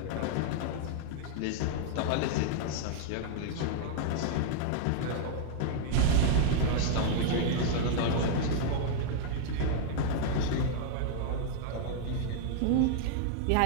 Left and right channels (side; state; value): both; different; correlation -0.01